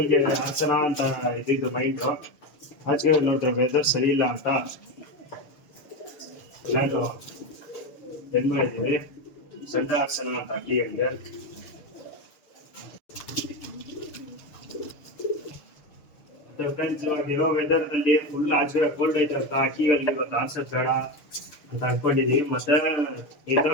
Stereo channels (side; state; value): right; late; 6.7 ms